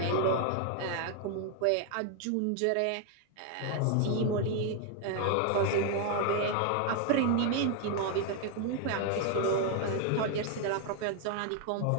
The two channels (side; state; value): both; different; correlation 0.00